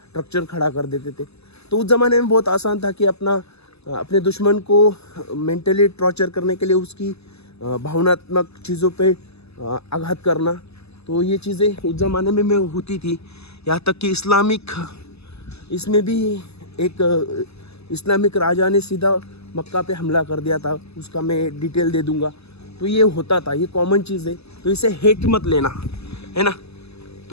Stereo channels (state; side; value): late; right; 0.79 ms